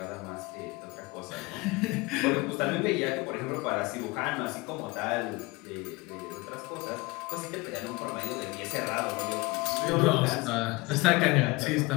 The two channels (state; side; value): quieter; right; 23.4 dB